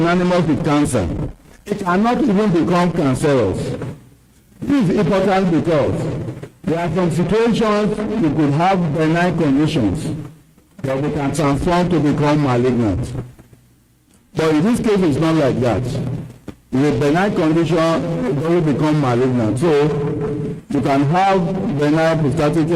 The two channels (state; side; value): identical; both; correlation 1.00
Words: with cancer, it cannot even become cancerous. This is important because there are some situations you could have benign conditions that we can transform to become malignant. But in this case, it's not like that. With a benign condition, it doesn't become malignant. So you can have benign prostatic